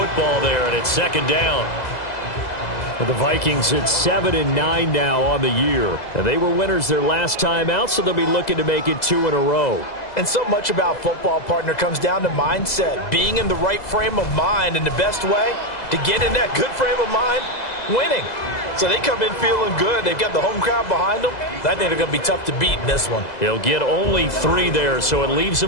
there, and it's second down. For the Vikings, it's 7-9 now on the year. And they were winners their last time out, so they'll be looking to make it 2 in a row. And so much about football, partner, comes down to mindset. Being in the right frame of mind, and the best way to get in that good frame of mind, winning. So they come in feeling good. They've got the home crowd behind them. I think they're going to be tough to beat in this one. He'll get only 3 there, so it leaves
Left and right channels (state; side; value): late; right; 2.0 ms